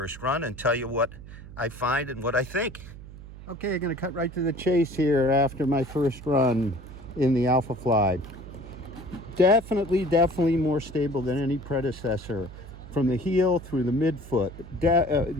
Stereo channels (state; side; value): noise; right; hum, 15 dB below the sound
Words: run and tell you what I find and what I think. Okay, I'm going to cut right to the chase here after my first run in the Alphafly. Definitely more stable than any predecessor. From the heel through the midfoot,